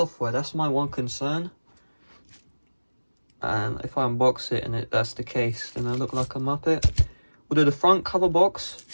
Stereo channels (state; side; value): inverted; both; correlation -1.00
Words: That's my one concern. And if I unbox it and that's the case, then I look like a muppet. Although the front cover box